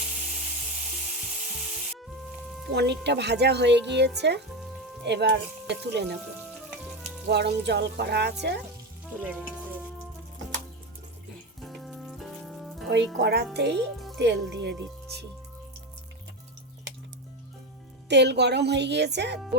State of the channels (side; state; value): both; normal; correlation 0.17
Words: পনিরটা ভাজা হয়ে গিয়েছে, এবার তুলে নেব। গরম জল করা আছে, তুলে নেব। ওই কড়াতেই তেল দিয়ে দিচ্ছি। তেল গরম হয়ে গিয়েছে,